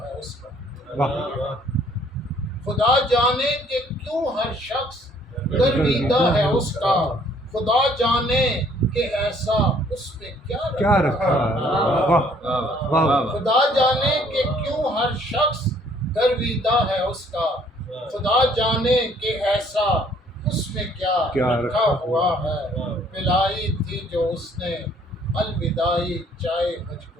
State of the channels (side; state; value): both; normal; correlation 0.61